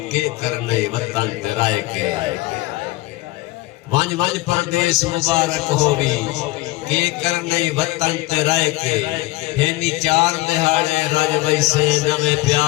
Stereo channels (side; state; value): right; quieter; 19.7 dB